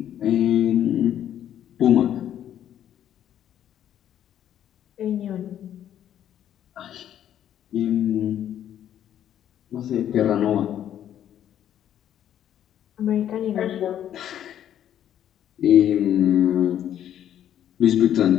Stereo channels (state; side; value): quieter; right; 10.6 dB